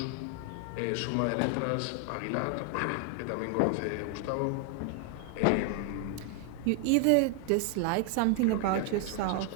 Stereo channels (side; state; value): both; different; correlation 0.00